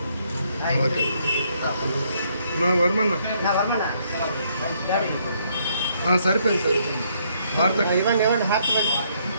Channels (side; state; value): both; inverted; correlation -0.70